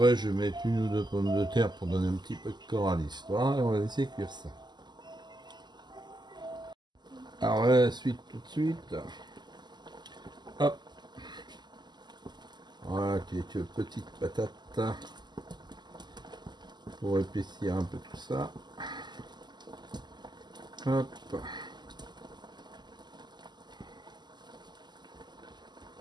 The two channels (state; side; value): late; left; 0.21 ms